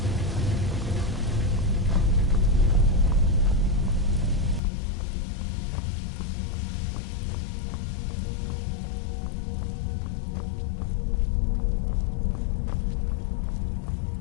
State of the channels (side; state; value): right; drops out; at 4.6 s